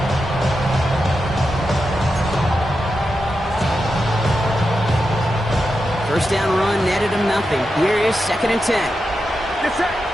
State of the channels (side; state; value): both; normal; correlation 0.88